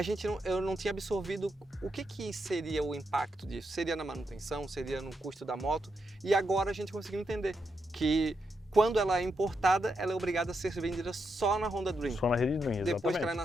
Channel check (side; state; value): both; normal; correlation 0.83